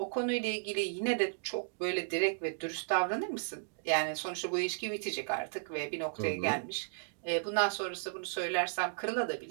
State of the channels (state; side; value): silent; left; digital silence